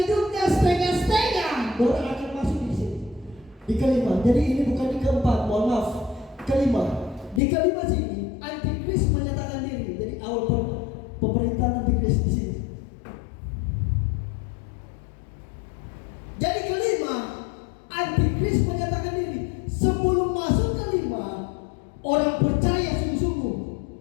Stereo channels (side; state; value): right; drops out; at 7.4 s